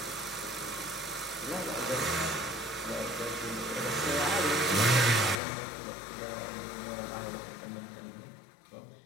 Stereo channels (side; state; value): right; drops out; at 5.4 s